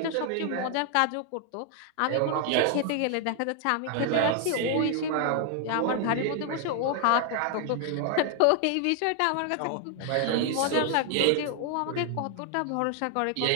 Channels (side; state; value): both; different; correlation 0.00